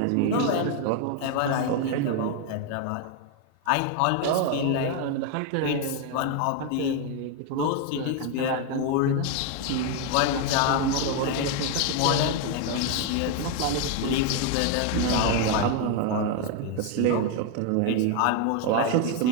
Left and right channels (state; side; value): different; both; correlation 0.01